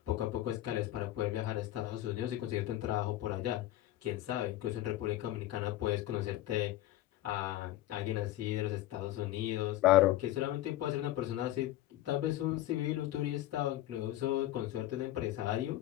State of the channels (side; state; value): right; quieter; 14.6 dB